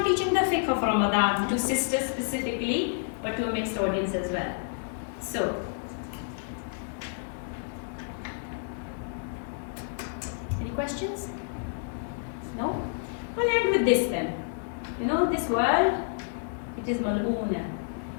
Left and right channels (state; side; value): silent; right; 58 dB below the other